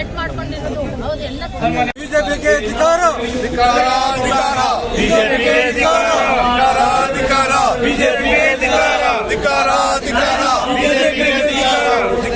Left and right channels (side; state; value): both; identical; correlation 1.00